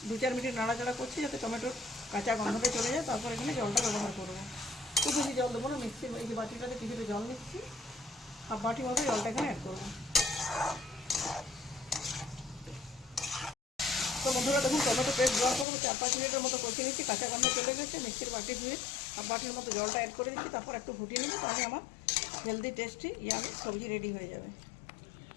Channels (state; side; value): drops out; right; at 15.7 s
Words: 2-4 মিনিট নাড়াচাড়া করছি, যাতে টমেটোর কাঁচা গন্ধটা চলে যায়। তারপর এখানে জলটা ব্যবহার করবো। খুব বেশি জল দেবো না, মিক্সির এই যে বাটিটাতে কিছুটা জল নিচ্ছি, হাফ বাটি মতো জলটা এখানে অ্যাড করবো। তো বন্ধুরা দেখুন, টমেটো পেস্ট দেওয়ার পর 4-5 মিনিটের মতো কষিয়ে নিচ্ছি। কাঁচা গন্ধ চলে গেছে। মিক্সির বাটি ধুয়ে হাফ বাটির মতো জলটা অ্যাড করে দিচ্ছি, তারপর একটু ফুটিয়ে নিচ্ছি। তাহলে আমার হেলদি টেস্টি ইয়ামি সবজি রেডি হয়ে যাবে।